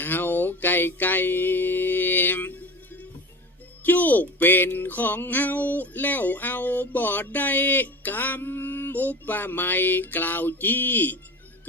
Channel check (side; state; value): both; normal; correlation 0.32